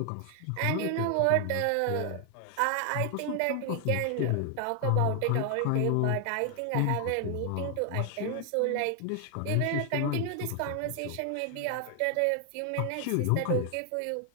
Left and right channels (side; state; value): both; different; correlation 0.00